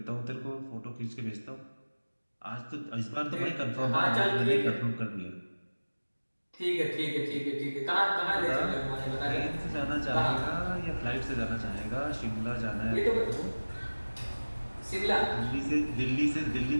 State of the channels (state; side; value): inverted; both; correlation -1.00